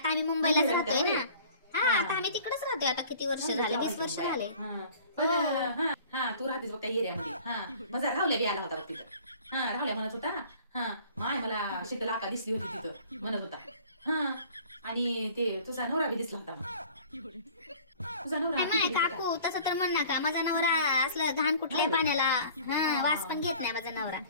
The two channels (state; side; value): inverted; both; correlation -0.49